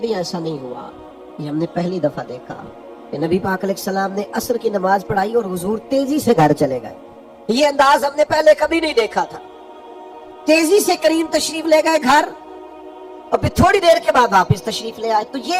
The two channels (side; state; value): both; identical; correlation 1.00